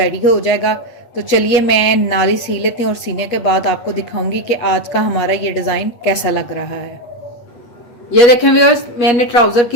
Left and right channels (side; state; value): right; late; 8.3 ms